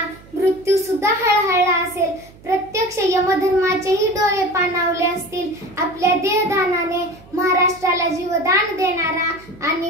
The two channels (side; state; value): right; noise; hum, 24 dB below the sound